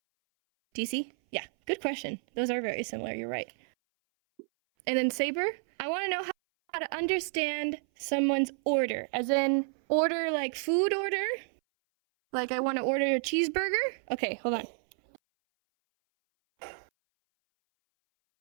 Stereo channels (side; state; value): left; silent; 58 dB below the other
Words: Do you see? Yeah, good question. Those are very similar, you're right. And then Saber, I want to know how to understand someone's order, as in order like food order. Like I want to order a cheeseburger. Okay, hold on.